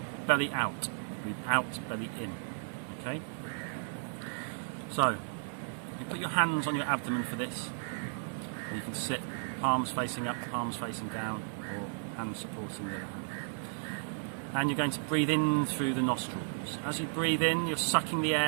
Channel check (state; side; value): silent; left; digital silence